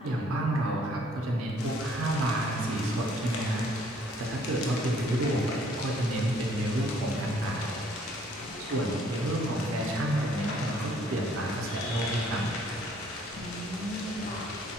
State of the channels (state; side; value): normal; both; correlation 0.62